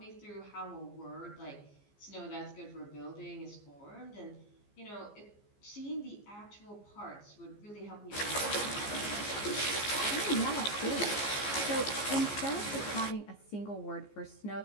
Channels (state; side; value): late; right; 15 ms